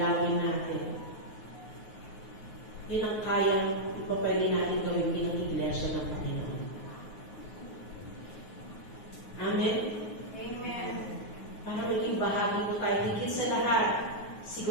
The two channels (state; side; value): late; right; 9.4 ms